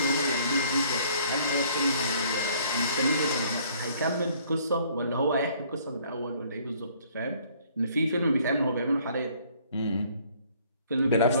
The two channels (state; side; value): inverted; both; correlation -0.60